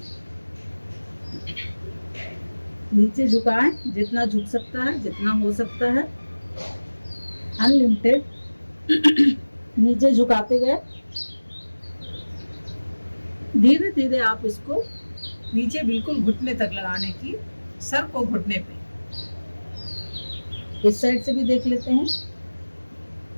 नीचे झुकाएं, जितना झुक सकता है, जितना हो सकता है, अनलिमिटेड नीचे झुकाते गए। धीरे धीरे आप इसको नीचे बिल्कुल घुटने तक लगाने की, सर को घुटने पे। इस साइड से भी देख लेते हैं।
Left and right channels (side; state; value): both; inverted; correlation -1.00